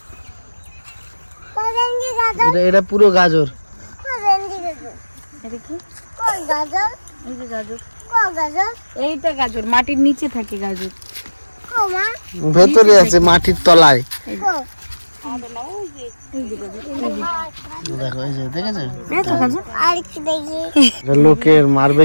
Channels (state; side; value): inverted; both; correlation -1.00